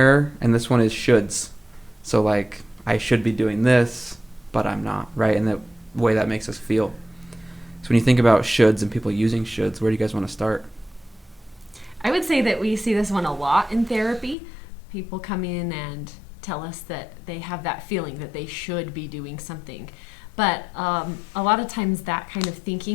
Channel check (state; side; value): drops out; right; at 14.4 s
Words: and this one is shoulds. So, like, I should be doing this, but I'm not, right? And the way that makes us feel. So, when you think about shoulds and people using shoulds, where do you guys want to start? I would say that we see this one a lot in therapy. People come in and tell us that they have that feeling that they should be doing something. But a lot of times that kind of